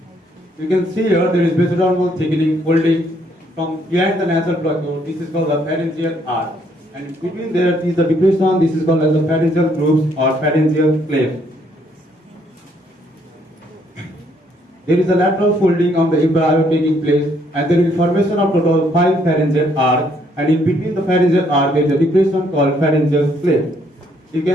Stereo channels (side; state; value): both; normal; correlation 0.68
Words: You can see here there is mesodermal thickening folding from behind the nasal plug. This is called the pharyngeal arch. And between there is the depression. This is called as the pharyngeal grooves or pharyngeal cleft. There is a lateral folding of the embryo taking place, and there is formation of total 5 pharyngeal arcs, and in between the pharyngeal arc there is a depression called pharyngeal cleft. You